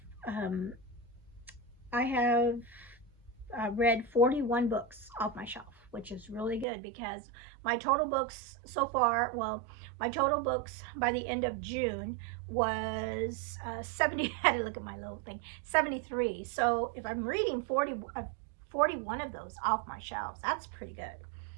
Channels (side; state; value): left; drops out; at 6.7 s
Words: read 41 books off my shelf, which is really good, because my total books so far, well, my total books by the end of June was 70, I had to look at my little thing, 73. So if I'm reading 41 41 of those off my shelves. That's pretty good.